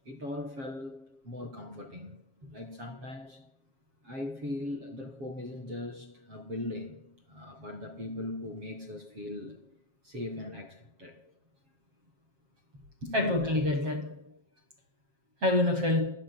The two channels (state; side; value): late; left; 7.4 ms